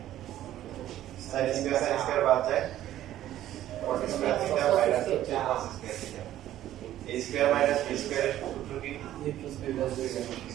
sin স্কয়ার বাদ যায় 40 স্কয়ার থিটা মাইনাস হচ্ছে cos square theta a square minus b square এর সূত্র কি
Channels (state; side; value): quieter; left; 12.9 dB